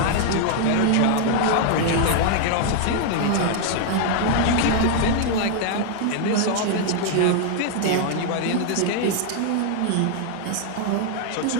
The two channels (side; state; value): both; different; correlation 0.00